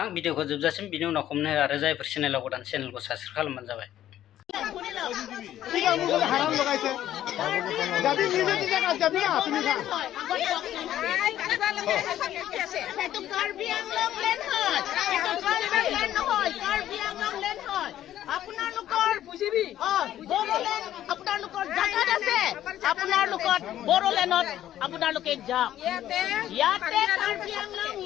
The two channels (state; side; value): quieter; right; 12.2 dB